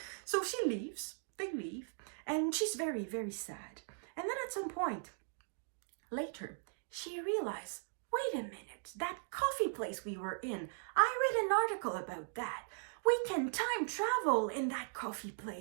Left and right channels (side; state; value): left; silent; digital silence